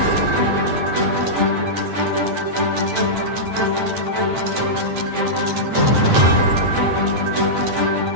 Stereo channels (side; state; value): left; late; 9.0 ms